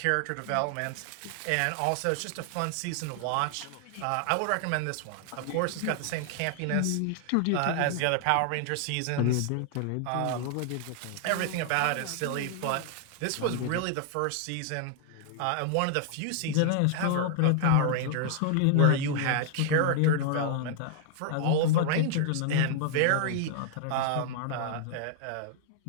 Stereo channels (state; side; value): different; both; correlation 0.00